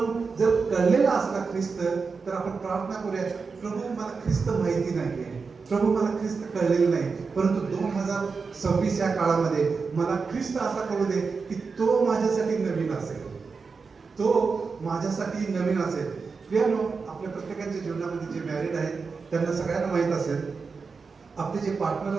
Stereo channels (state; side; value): quieter; left; 4.9 dB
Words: जर कळलेला असला ख्रिस्त तर आपण प्रार्थना करूया, प्रभू मला ख्रिस्त माहिती नाहीये, प्रभू मला ख्रिस्त कळलेलं नाही, परंतु 2026 या काळामध्ये मला ख्रिस्त असा कळू दे की तो माझ्यासाठी नवीन असेल, तो माझ्यासाठी नवीन असेल. प्रियानो, आपल्या प्रत्येकाच्या जीवनामध्ये जे मॅरिड आहेत त्यांना सगळ्यांना माहीत असेल, आपले जे पार्टनर